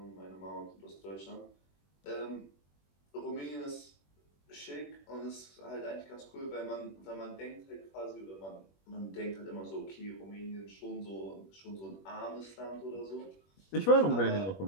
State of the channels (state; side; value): late; right; 21 ms